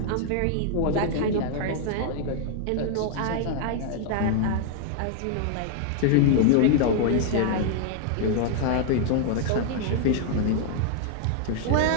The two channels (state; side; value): different; both; correlation -0.01